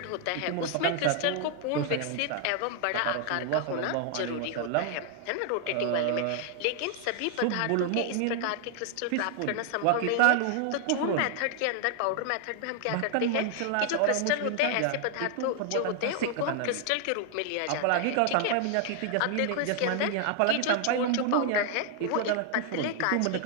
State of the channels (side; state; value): both; different; correlation 0.00